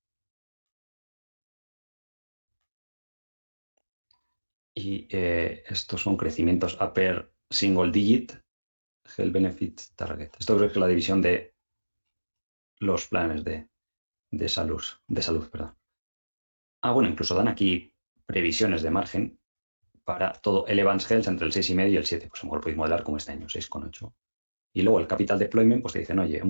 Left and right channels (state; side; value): inverted; both; correlation -1.00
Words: y estos son crecimientos upper single digit, Health Benefit Target. Esto creo que es la división de los planes de salud, perdón. Ah, bueno, incluso dan aquí previsiones de margen para todo el Evans Health entre el 6,5 y el 7. Pues a lo mejor podéis modelar como este año, 6,8. Y luego el capital deployment, pues te dicen, oye,